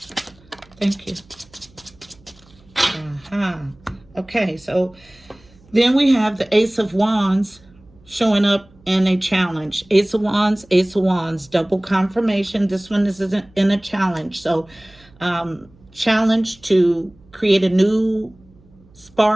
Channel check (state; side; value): noise; right; hum, 28 dB below the sound